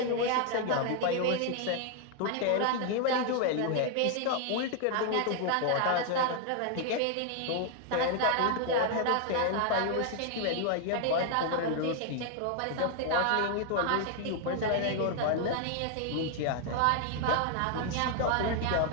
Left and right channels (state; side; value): different; both; correlation 0.00